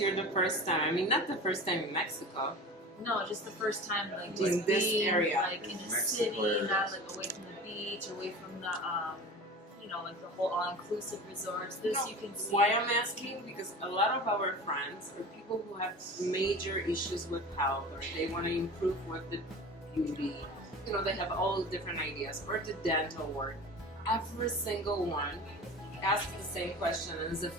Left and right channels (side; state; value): both; normal; correlation 0.35